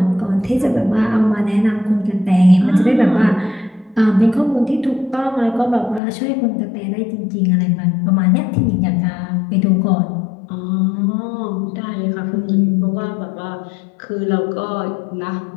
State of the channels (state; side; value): drops out; right; at 6.0 s